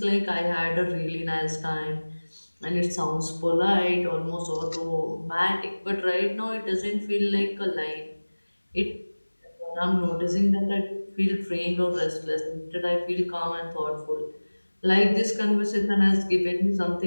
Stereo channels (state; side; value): inverted; both; correlation -1.00